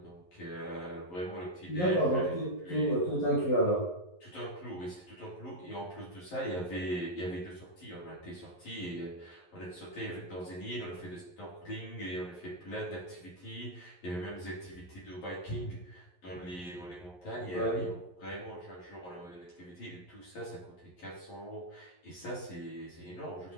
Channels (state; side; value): late; right; 11 ms